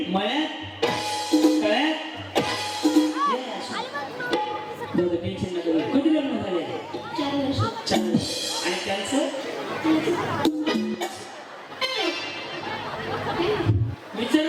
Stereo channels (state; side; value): identical; both; correlation 1.00